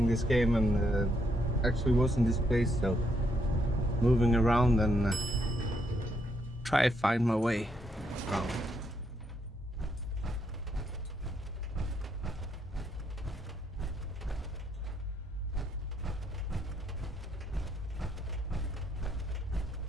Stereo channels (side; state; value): both; normal; correlation 0.75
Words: this game and actually was in this place, so moving around and try to find my way around.